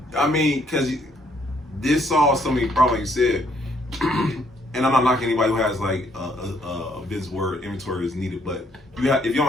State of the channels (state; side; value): normal; both; correlation 0.68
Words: this solves so many problems, like you said. And I'm not knocking anybody who has like a business where inventory is needed, but if you